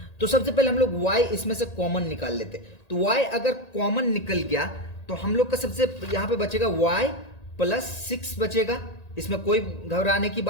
तो सबसे पहले हम लोग y इसमें से कॉमन निकाल लेते। तो y अगर कॉमन निकल गया तो हम लोग का सबसे यहां पे बचेगा y प्लस 6 बचेगा, इसमें कोई घबराने की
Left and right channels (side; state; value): right; late; 1.8 ms